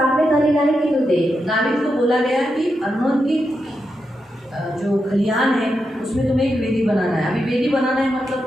आलेलं आहे की तू दे. दावीद को बोला गया कि अर्नोन की जो खलिहान है उसमें तुम्हें एक वेदी बनाना है. अभी वेदी बनाना है मतलब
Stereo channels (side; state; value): both; normal; correlation 0.86